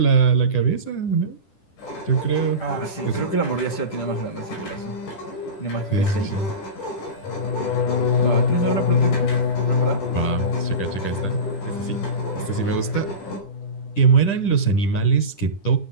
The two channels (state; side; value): late; right; 10 ms